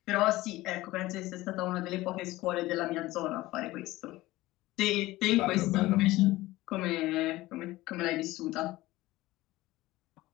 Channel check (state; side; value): quieter; right; 18.1 dB